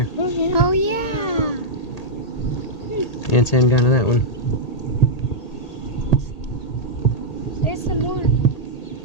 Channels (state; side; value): late; right; 1.8 ms